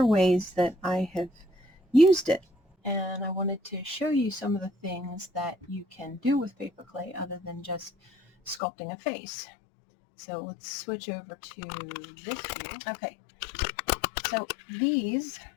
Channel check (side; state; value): right; drops out; at 8.6 s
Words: ways that I have used it. And I wanted to show you some of the things that you can do with paper clay other than just sculpting a face. So let's switch over to this view. Okay. So these,